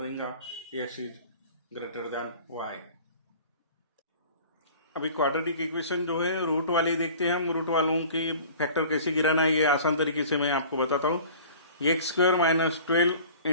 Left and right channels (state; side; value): inverted; both; correlation -0.44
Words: x is greater then y। अभी क्वाड्रेटिक इक्वेशन जो है रूट वाली देखते हैं हम। रूट वालों की फैक्टर कैसे गिराना है ये आसान तरीके से मैं आपको बताता हूँ। X square minus 12